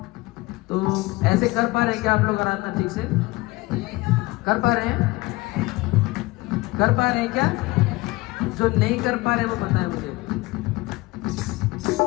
तो ऐसे कर पा रहे हैं क्या आप लोग आराधना ठीक से? कर पा रहे हैं? कर पा रहे हैं क्या? जो नहीं कर पा रहे वो बताएं मुझे।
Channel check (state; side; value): quieter; right; 21.6 dB